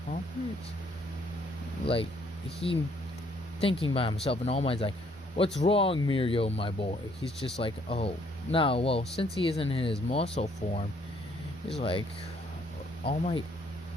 pump it? Like, he thinking by himself, and All Might's like, what's wrong, Mirio, my boy? He's just like, oh, no, well, since he isn't in his muscle form, he's like, All Might,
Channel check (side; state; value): both; normal; correlation 0.66